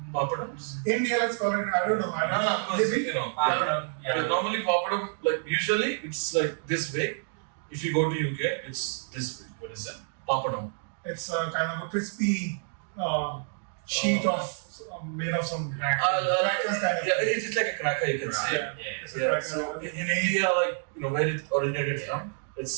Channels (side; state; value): left; silent; 59 dB below the other